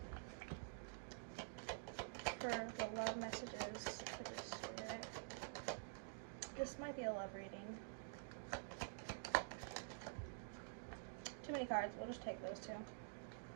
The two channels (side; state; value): left; silent; digital silence